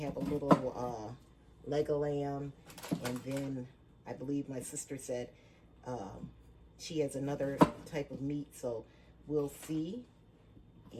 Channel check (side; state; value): both; identical; correlation 1.00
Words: a little leg of lamb, and then I believe my sister said she has another type of meat, so we'll see.